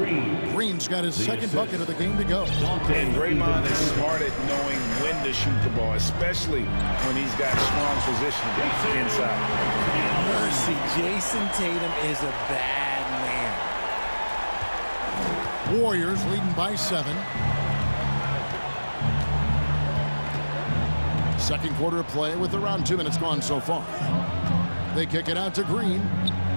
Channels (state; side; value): inverted; both; correlation -1.00